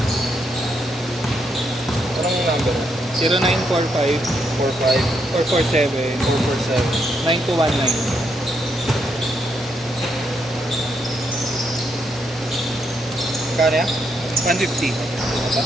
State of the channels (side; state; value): both; normal; correlation 0.78